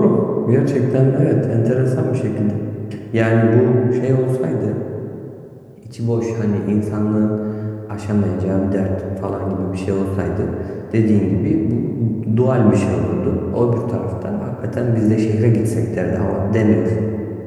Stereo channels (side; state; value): both; identical; correlation 1.00